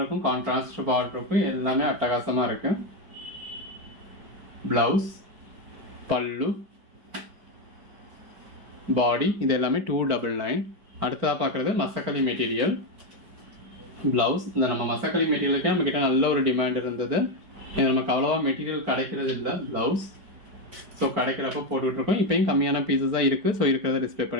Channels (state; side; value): late; left; 4.5 ms